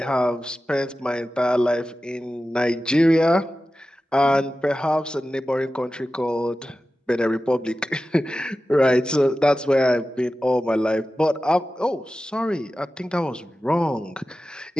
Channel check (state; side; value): normal; both; correlation 0.94